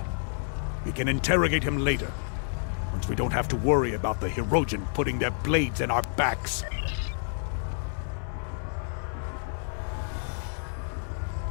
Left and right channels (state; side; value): silent; right; digital silence